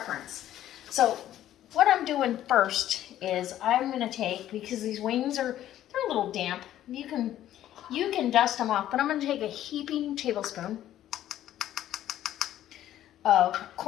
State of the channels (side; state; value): right; quieter; 12.4 dB